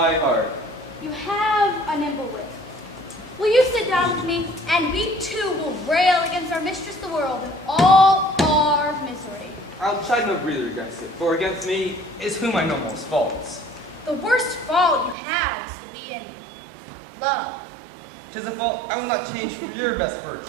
heart. You have a nimble wit. Will you sit down with me, and we too will rail against our mistress the world and all our misery. I'll chide no breather against it, for against me is whom I know most faults. The worst fault you have is to be in love. 'Tis a fault I will not change for your best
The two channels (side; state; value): left; drops out; at 15.2 s